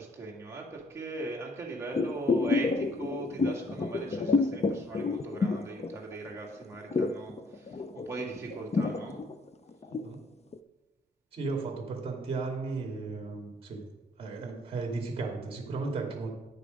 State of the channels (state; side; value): normal; both; correlation 0.64